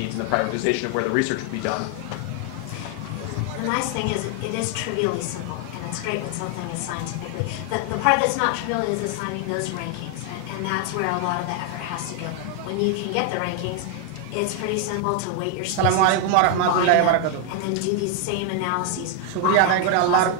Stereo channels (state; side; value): different; both; correlation 0.00